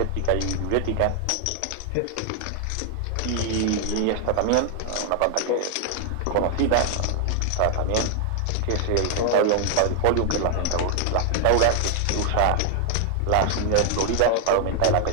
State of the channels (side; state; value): both; different; correlation 0.00